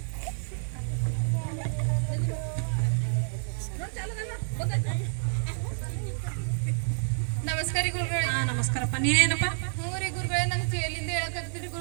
ನಮಸ್ಕಾರ ಗುರುಗಳೇ. ಹಾ ನಮಸ್ಕಾರಪ್ಪ, ನೀನೇನಪ್ಪ? ಹ್ಞೂ ರೀ ಗುರುಗಳೇ, ನಂಗೆ ಜೈಲಿಂದ ಹೇಳಕತ್ತೀರಿ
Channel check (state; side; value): silent; left; 59 dB below the other